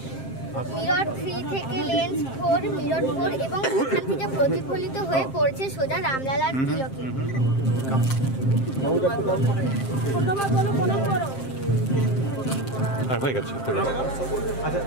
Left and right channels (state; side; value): late; right; 7.6 ms